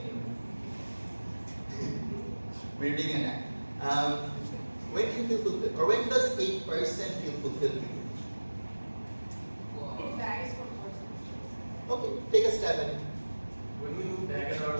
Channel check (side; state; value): both; inverted; correlation -1.00